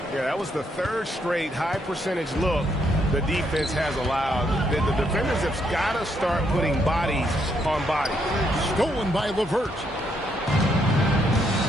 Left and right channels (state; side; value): normal; both; correlation 0.75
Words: Yeah, that was the third straight high percentage look the defense has allowed. The defenders have got to start putting bodies on bodies. Stolen by LeVert.